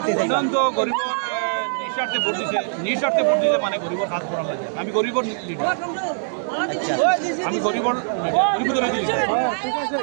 উন্নয়ন তো গরিব নিঃস্বার্থে ভোট দিতে মানে গরিবের কাজ করার লাগে আমি গরিবর লিডার আমি গরিবর ধরে দিয়েছি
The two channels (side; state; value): left; silent; digital silence